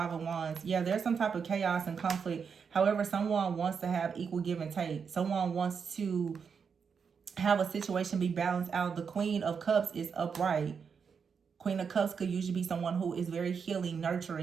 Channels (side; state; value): left; quieter; 6.2 dB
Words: of Wands. Yeah, there's some type of chaos and conflict. However, someone wants to have equal give and take. Someone wants to have a situation be balanced out. The Queen of Cups is upright. Queen of Cups could usually be someone who is very healing,